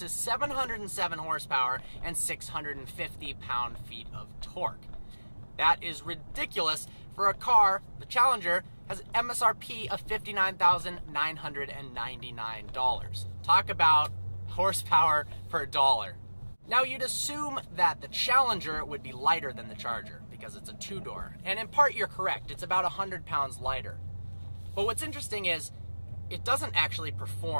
707 horsepower and 650 pound-feet of torque. That is ridiculous for a car. The Challenger has an MSRP of $59,999. Talk about horsepower per dollar. Now, you'd assume that the Challenger would be lighter than the Charger because it's a two-door. And in part, you're correct. It's about 100 pounds lighter. But what's interesting is it doesn't actually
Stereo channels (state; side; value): inverted; both; correlation -1.00